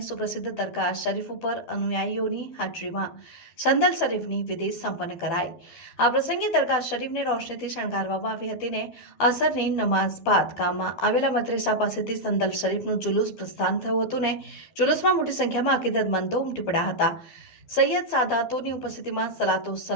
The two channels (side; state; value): right; late; 12 ms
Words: સુપ્રસિદ્ધ દરગાહ શરીફ ઉપર અનુયાયીઓની હાજરીમાં સંદલ શરીફની વિધિ સંપન્ન કરાઈ. આ પ્રસંગે દરગાહ શરીફને રોશનીથી શણગારવામાં આવી હતી ને અસરની નમાઝ બાદ ગામમાં આવેલા મદ્રેસા પાસેથી સંદલ શરીફનું જુલુસ પ્રસ્થાન થયું હતું ને જુલુસમાં મોટી સંખ્યામાં અકીદતમંદો ઉમટી પડ્યા હતા. સૈયદ સાદાતોની ઉપસ્થિતિમાં સલાતો